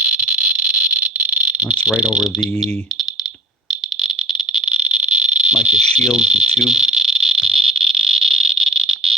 that's right over the mica shield, the tube.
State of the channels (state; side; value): normal; both; correlation 0.46